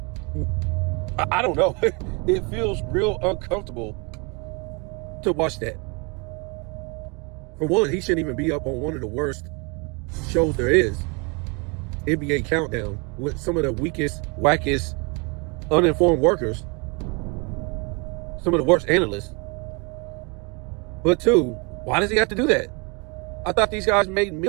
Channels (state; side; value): quieter; left; 31.5 dB